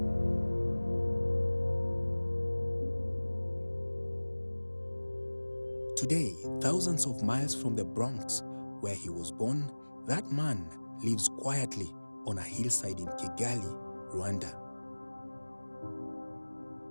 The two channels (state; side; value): inverted; both; correlation -1.00